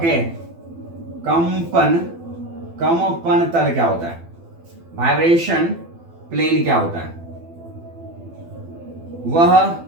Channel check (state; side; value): late; left; 12 ms